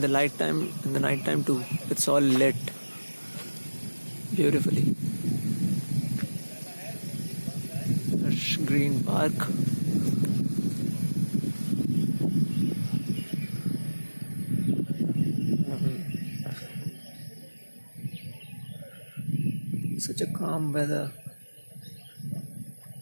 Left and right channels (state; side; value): inverted; both; correlation -1.00